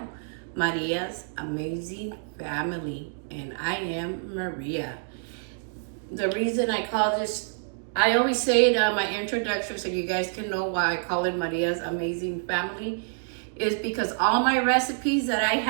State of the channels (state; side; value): silent; left; digital silence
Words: Maria's Amazing Family, and I am Maria. The reason I call this, I always say it on my introduction so you guys can know why I call it Maria's Amazing Family, is because all my recipes that I